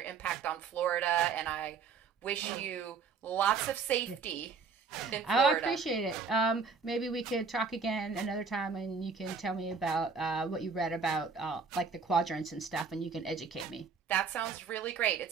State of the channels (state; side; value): quieter; left; 5.2 dB